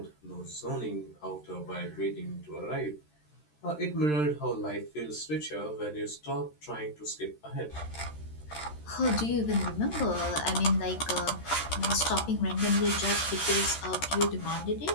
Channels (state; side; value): late; right; 13 ms